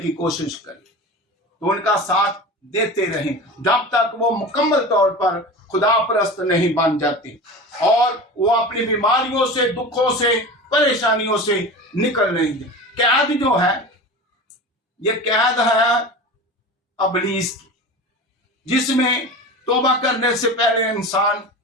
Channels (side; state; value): both; normal; correlation 0.31